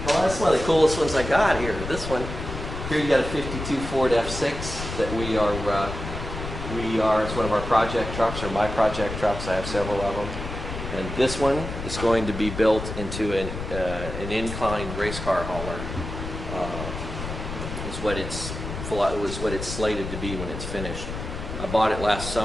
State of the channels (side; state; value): left; noise; rumble, 7 dB below the sound